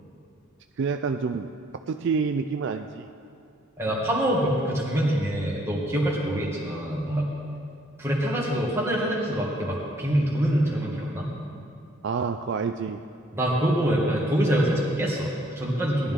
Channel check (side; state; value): both; normal; correlation 0.64